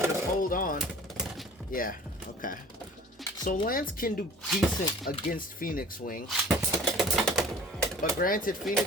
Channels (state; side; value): normal; both; correlation 0.46